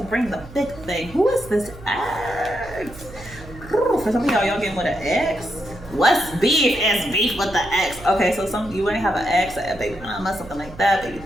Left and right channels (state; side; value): noise; right; hum, 17 dB below the sound